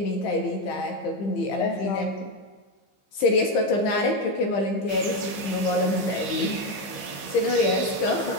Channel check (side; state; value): right; late; 15 ms